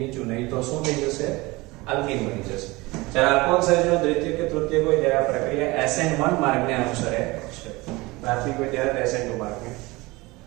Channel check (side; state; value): left; quieter; 22.4 dB